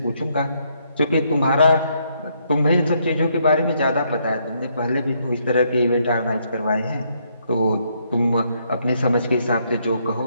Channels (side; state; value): both; inverted; correlation -0.73